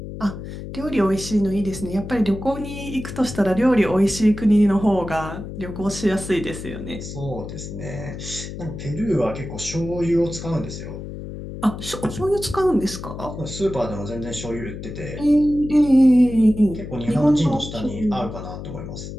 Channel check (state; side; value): noise; left; hum, 9 dB below the sound